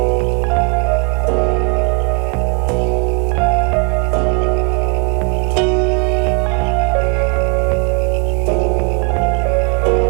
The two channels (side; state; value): left; quieter; 36.1 dB